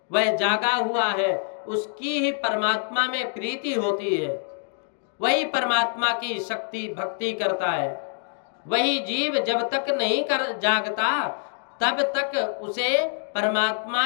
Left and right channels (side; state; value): right; silent; 61 dB below the other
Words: वह जागा हुआ है, उसकी ही परमात्मा में प्रीति होती है, वही परमात्मा की शक्ति भक्ति करता है। वही जीव जब तक नहीं कर जागता तब तक उसे